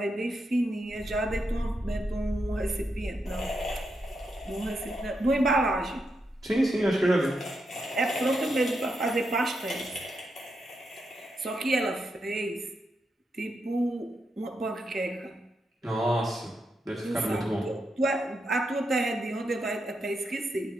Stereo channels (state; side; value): normal; both; correlation 0.83